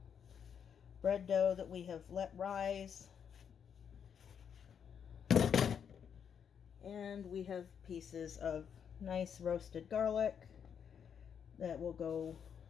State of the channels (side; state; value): right; quieter; 7.7 dB